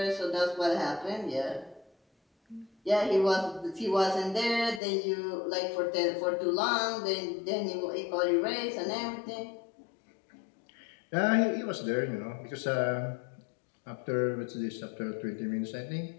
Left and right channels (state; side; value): drops out; right; at 4.8 s